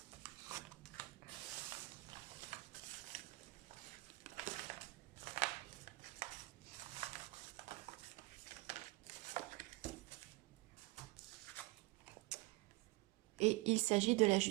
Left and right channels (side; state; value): left; quieter; 23.1 dB